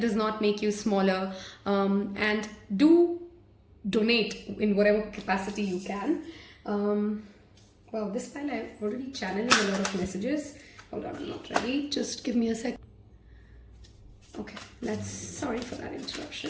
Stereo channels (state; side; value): identical; both; correlation 1.00